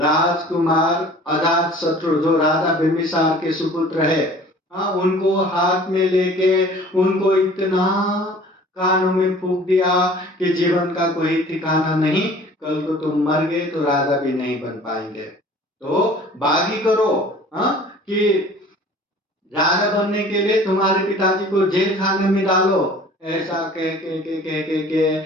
अजातशत्रु, जो राजा बिंबिसार के सुपुत्र है, उनको हाथ में लेके उनको इतना कानों में फूंक दिया कि जीवन का कोई ठिकाना नहीं, कल को तुम मर गए तो राजा भी नहीं बन पाएंगे, तो बागी करो कि राजा बनने के लिए तुम्हारे पिताजी को जेल खाने में डालो। ऐसा कह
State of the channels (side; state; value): both; normal; correlation 0.47